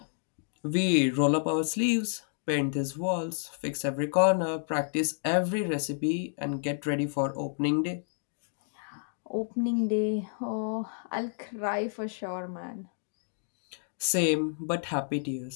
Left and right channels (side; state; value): right; silent; digital silence